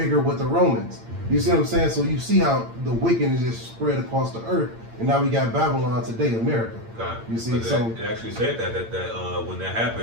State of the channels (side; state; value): left; late; 8.8 ms